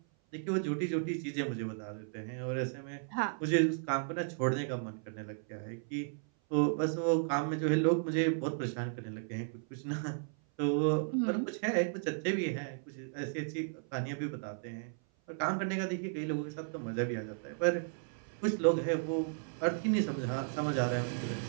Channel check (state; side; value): silent; left; 55 dB below the other